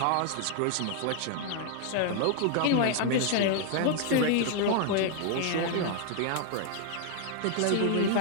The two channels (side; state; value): both; different; correlation 0.00